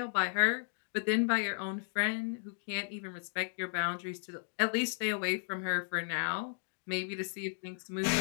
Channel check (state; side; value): silent; right; digital silence